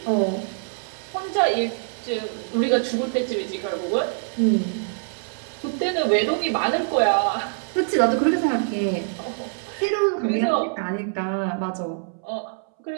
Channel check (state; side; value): silent; left; 62 dB below the other